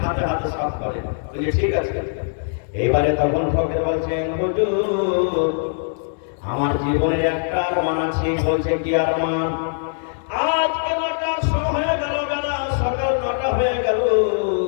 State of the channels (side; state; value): right; silent; digital silence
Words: হাতে হাতে সাফ করে। বলছে, ঠিক আছে। এবারে তখন ফকির বলছেন, হুজুর, আমার জীবনের একটা আরমান আছে। বলছে, কি আরমান? আজকে 9টার সময় হয়ে গেল, বেলা সকাল 9টা হয়ে গেল,